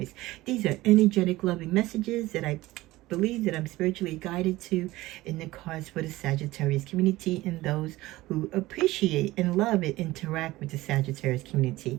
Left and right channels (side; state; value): left; quieter; 18.2 dB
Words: These are energetic, loving messages that I believe that I'm spiritually guided to in the cards for the Sagittarius community and those who appreciate and love and interact with the Sagittarius